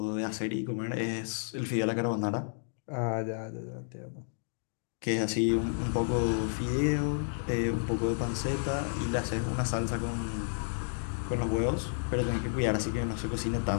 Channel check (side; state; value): right; silent; digital silence